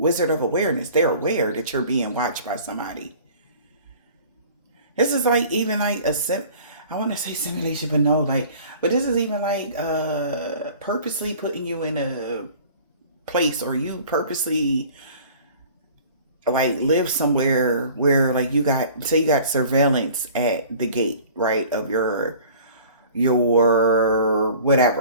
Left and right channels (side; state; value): both; inverted; correlation -0.47